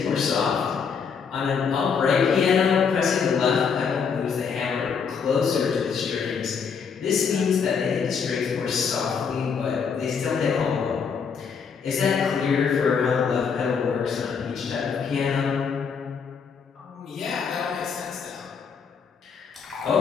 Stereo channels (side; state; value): right; quieter; 6.2 dB